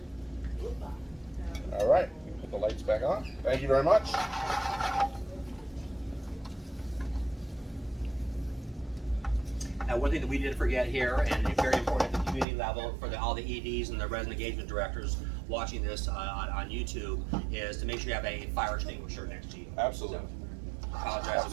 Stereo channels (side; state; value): left; drops out; at 12.5 s